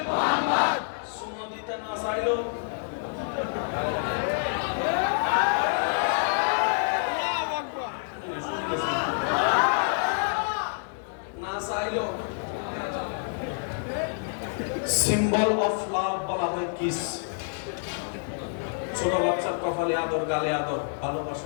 সুন্নাহ দিতে না চাইলো না চাইলো সিম্বল অফ লাভ বলা হয় কিস। ছোট বাচ্চার কপালে আদর, গালে আদর,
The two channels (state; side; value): silent; right; digital silence